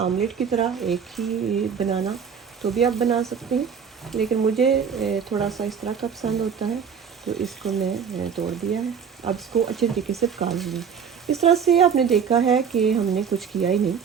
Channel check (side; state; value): left; quieter; 7.0 dB